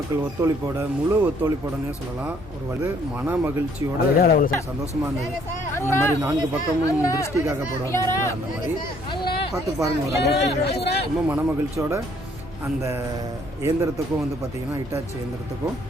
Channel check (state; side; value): normal; both; correlation 0.64